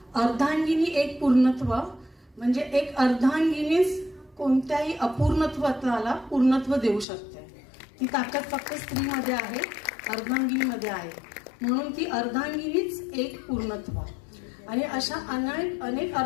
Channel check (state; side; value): drops out; right; at 7.1 s